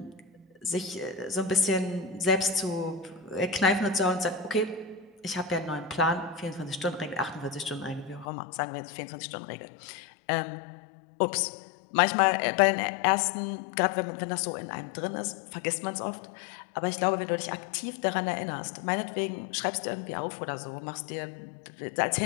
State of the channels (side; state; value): right; drops out; at 8.2 s